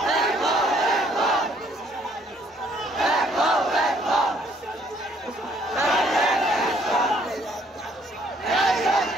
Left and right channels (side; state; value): both; normal; correlation 0.64